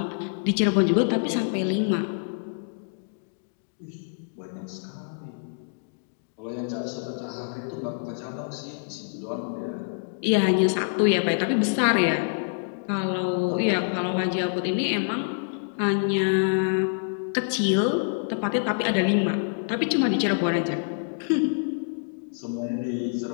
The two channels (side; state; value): right; silent; digital silence